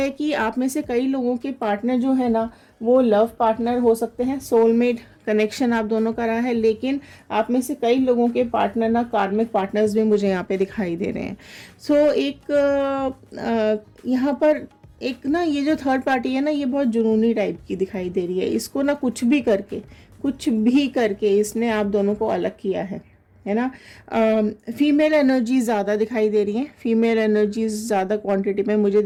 कि आप में से कई लोगों के पार्टनर जो है ना, वो लव पार्टनर हो सकते हैं, सोलमेट कनेक्शन आप दोनों का रहा है, लेकिन आप में से कई लोगों के पार्टनर ना कार्मिक पार्टनर्स भी मुझे यहाँ पे दिखाई दे रहे हैं। सो यहाँ पर एक ना ये जो थर्ड पार्टी है ना, ये बहुत जुनूनी टाइप की दिखाई दे रही है। इसको ना कुछ भी करके इसने आप दोनों को अलग किया है ना। फीमेल एनर्जी ज़्यादा दिखाई दे रही है, फीमेल एनर्जीज ज़्यादा क्वांटिटी में मुझे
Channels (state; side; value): identical; both; correlation 1.00